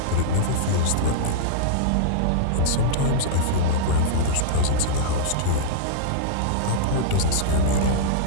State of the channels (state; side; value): different; both; correlation -0.02